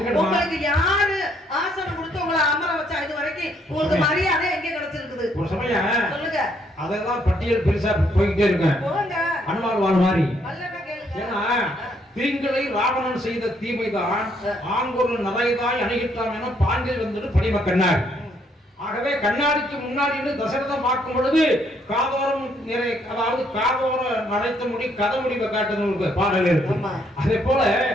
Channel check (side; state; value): both; normal; correlation 0.70